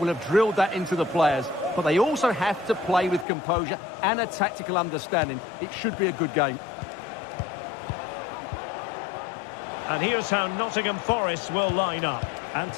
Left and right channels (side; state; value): right; drops out; at 3.2 s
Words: have drilled that into the players. But they also have to play with composure and a tactical understanding. It should be a good game. And here's how Nottingham Forest will line up.